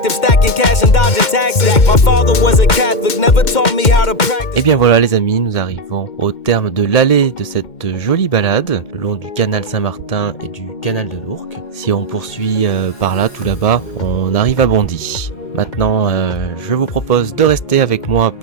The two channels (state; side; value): late; right; 2.1 ms